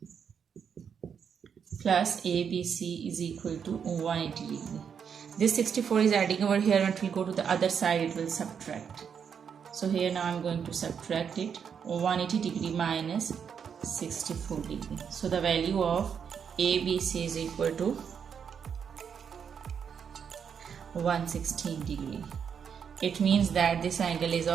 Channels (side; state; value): left; quieter; 7.2 dB